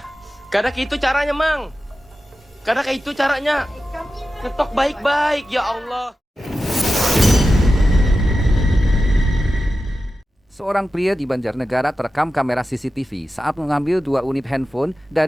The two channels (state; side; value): normal; both; correlation 0.93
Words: Karena itu caranya, Mang. Karena kayak itu caranya. Ketok baik-baik, ya Allah. Seorang pria di Banjarnegara terekam kamera CCTV saat mengambil 2 unit handphone